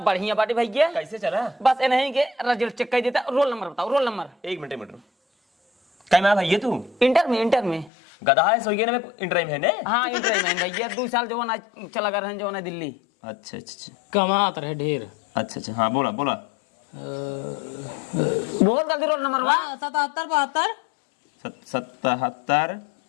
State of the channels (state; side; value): drops out; right; at 7.9 s